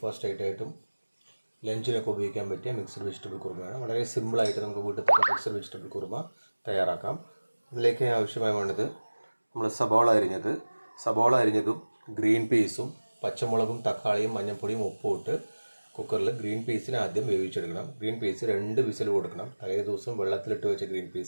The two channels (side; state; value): both; inverted; correlation -1.00